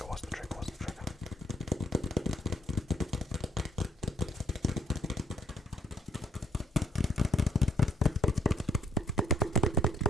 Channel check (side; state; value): both; normal; correlation 0.66